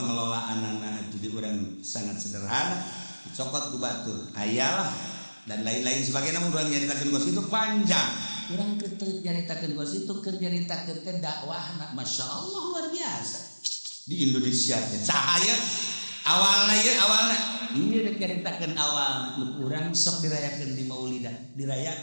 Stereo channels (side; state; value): both; inverted; correlation -1.00